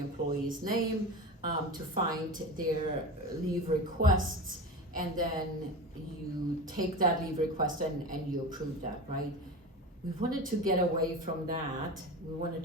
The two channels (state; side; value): normal; both; correlation 0.28